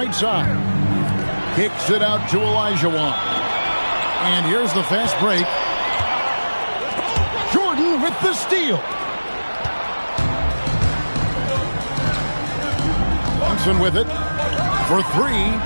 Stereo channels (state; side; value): inverted; both; correlation -1.00